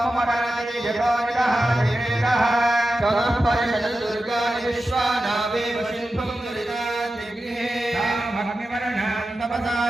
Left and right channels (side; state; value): both; normal; correlation 0.92